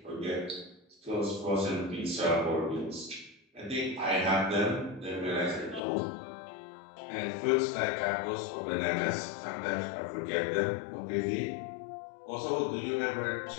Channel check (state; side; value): drops out; right; at 5.8 s